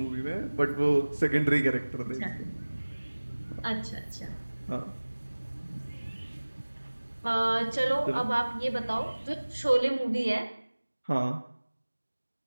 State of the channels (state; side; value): inverted; both; correlation -1.00